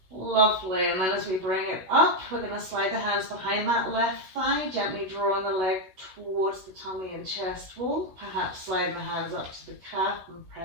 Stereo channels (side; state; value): left; late; 16 ms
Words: Lovely, and then as we bring it up, we're going to slide the hands behind that left thigh, gently drawing the leg towards the tummy and chest wall, perhaps sliding the hands up to the calf and